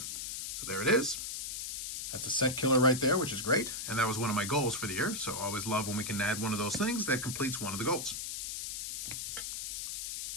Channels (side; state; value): left; noise; hiss, 5 dB below the sound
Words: So there it is. That's a set killer right there, which is great. And that was one of my goals for the year, so I always love when we can add one of those things that completes one of the goals.